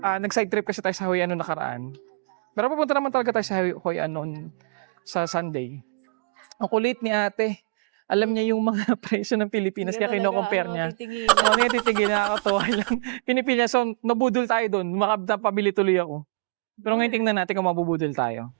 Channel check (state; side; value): quieter; left; 28.4 dB